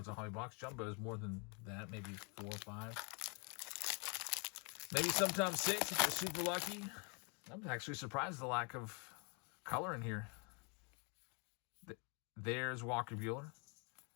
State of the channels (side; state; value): right; quieter; 33.7 dB